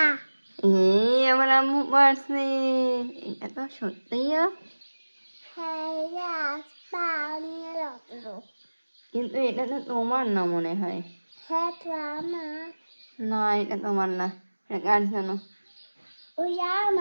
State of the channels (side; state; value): both; inverted; correlation -1.00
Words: আমার আম্মু পারছে। এটা তো সত্যিই কিন্তু এটা তো তোমার না মনে হয়। না এটা তোমার না, এটা কার জানো?